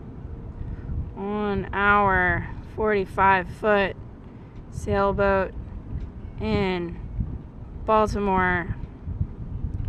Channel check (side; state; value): both; identical; correlation 1.00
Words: on our 45-foot sailboat in Baltimore.